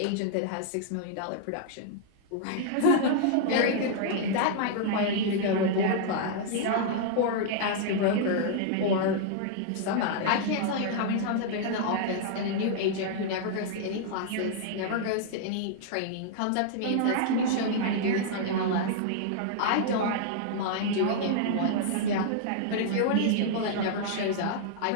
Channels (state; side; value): different; both; correlation -0.01